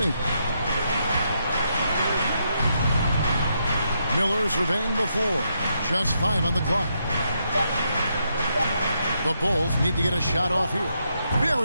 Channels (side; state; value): both; inverted; correlation -0.79